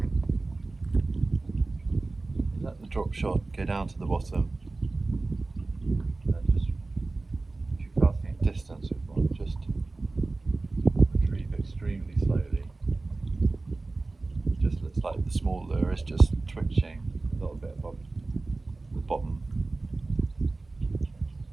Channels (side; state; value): left; quieter; 3.3 dB